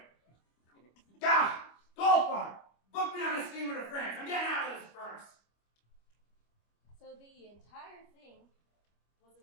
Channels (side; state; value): right; late; 25 ms